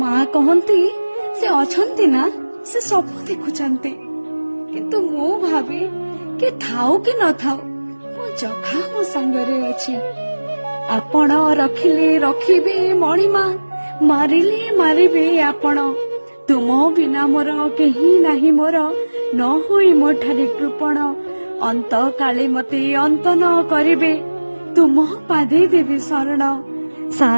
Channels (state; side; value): inverted; both; correlation -1.00